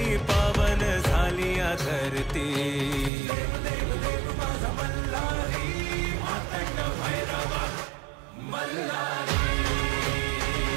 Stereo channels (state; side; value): drops out; left; at 3.1 s